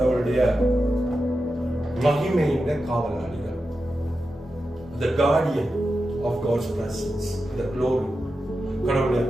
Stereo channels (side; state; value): both; normal; correlation 0.90